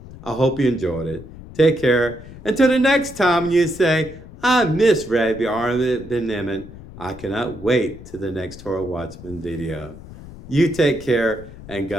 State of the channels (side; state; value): left; noise; rumble, 16 dB below the sound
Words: I hope you enjoyed it. Take care. Until the next time you say, I miss Rabbi Aaron ben-Emmett, I cannot wait to the next Torah Watchman video. You take care, and